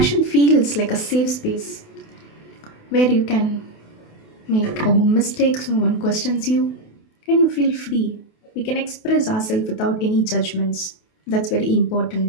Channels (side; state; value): right; late; 28 ms